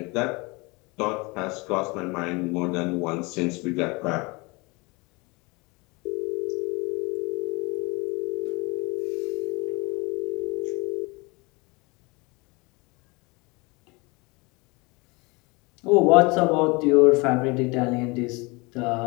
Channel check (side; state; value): right; quieter; 26.5 dB